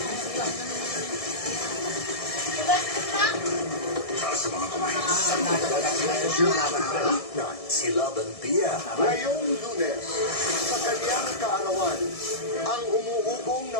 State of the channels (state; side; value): late; right; 1.6 ms